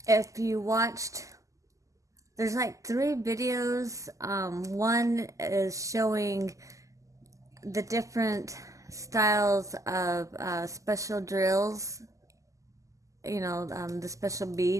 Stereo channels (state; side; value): late; left; 0.16 ms